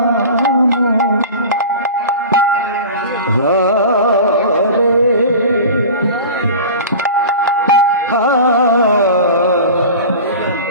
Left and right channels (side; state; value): both; inverted; correlation -0.35